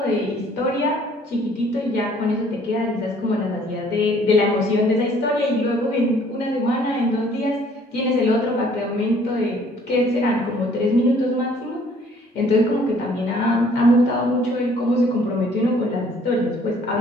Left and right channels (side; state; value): both; normal; correlation 0.59